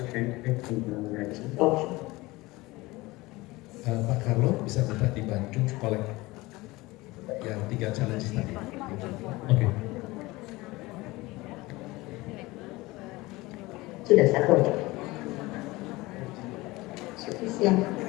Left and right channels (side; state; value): right; quieter; 20.9 dB